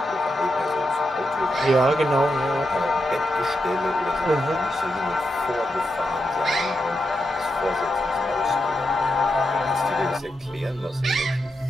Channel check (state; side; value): normal; both; correlation 0.85